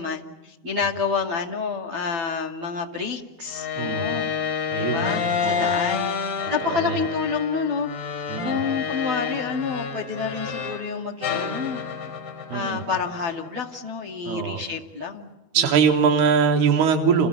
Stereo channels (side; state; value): left; late; 13 ms